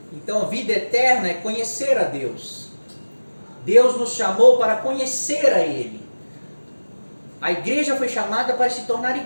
Então, a vida eterna é conhecer a Deus. Deus nos chamou para conhecer a Ele. A igreja foi chamada para se tornar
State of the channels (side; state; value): both; inverted; correlation -1.00